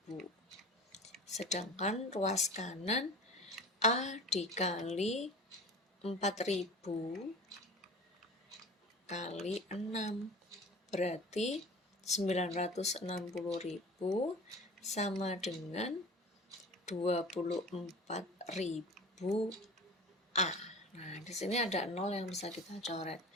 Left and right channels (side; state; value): both; normal; correlation 0.38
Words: Sedangkan ruas kanan A dikali 4.000 kali 6. Berarti 960.000 sama dengan 24.000 A. Nah, di sini ada 0 yang bisa kita coret.